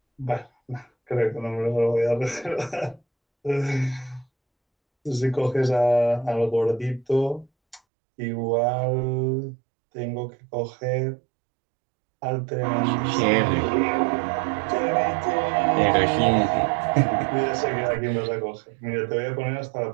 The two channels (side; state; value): left; drops out; at 7.8 s